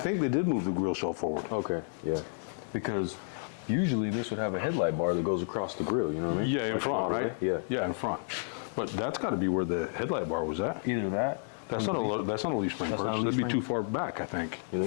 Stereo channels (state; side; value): silent; right; digital silence